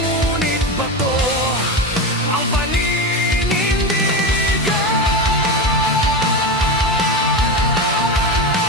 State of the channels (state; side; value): normal; both; correlation 0.19